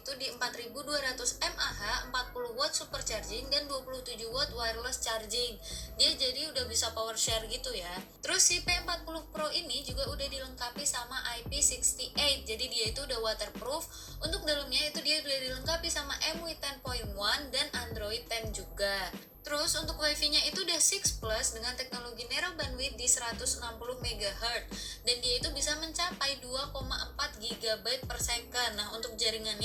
di 4200 mAh, 40 watt supercharging dan 27 watt wireless charging. Dia jadi udah bisa power share gitu ya. Terus si P40 Pro ini juga udah dilengkapi sama IP68. Jadi dia itu udah waterproof. Untuk dalamnya itu dia udah dilengkapi sama MUI 10.1 dan Android 10 juga. Terus untuk wifi-nya itu udah 6 Plus dengan teknologi narrow bandwidth di 160 MHz dan dia itu bisa mencapai 2,4 GB per second. Nah, untuk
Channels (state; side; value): identical; both; correlation 1.00